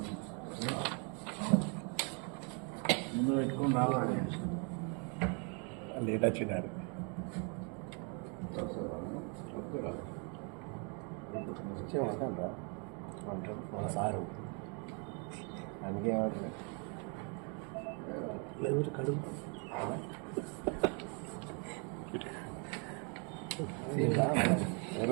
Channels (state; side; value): quieter; left; 36.5 dB